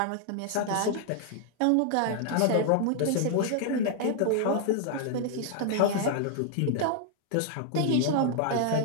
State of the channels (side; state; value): both; different; correlation 0.00